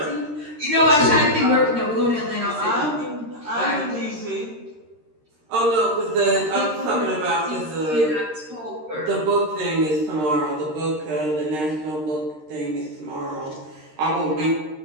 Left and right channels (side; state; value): left; late; 13 ms